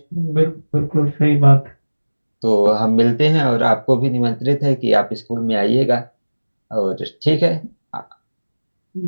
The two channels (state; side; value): inverted; both; correlation -1.00